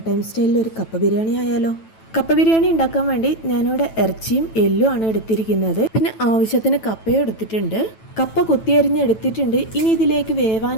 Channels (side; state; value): right; late; 9.1 ms